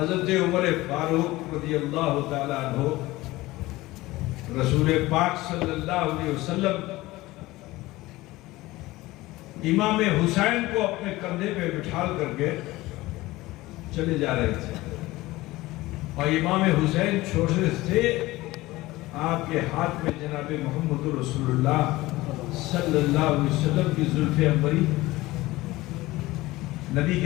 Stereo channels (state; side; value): quieter; right; 18.9 dB